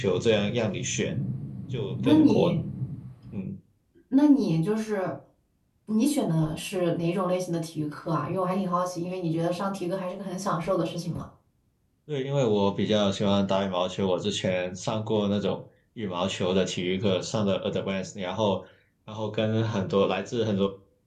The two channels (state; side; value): identical; both; correlation 1.00